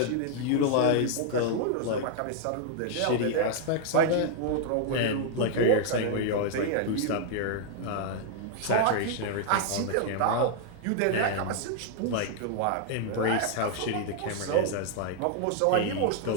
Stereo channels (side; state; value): both; different; correlation 0.00